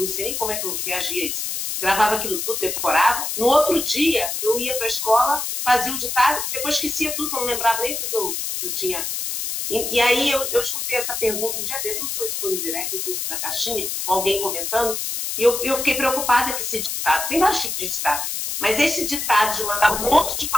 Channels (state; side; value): noise; left; hiss, 3 dB below the sound